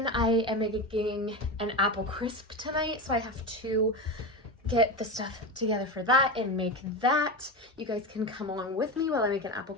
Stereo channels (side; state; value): both; normal; correlation 0.21